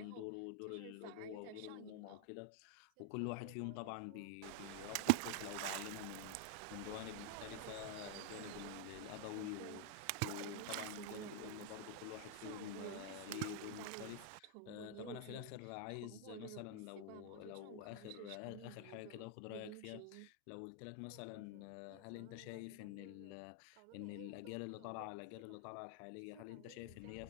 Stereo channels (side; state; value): both; different; correlation 0.00